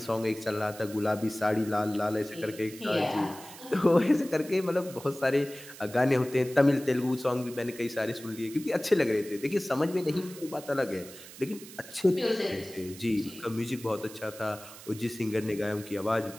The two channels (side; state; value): right; noise; hiss, 16 dB below the sound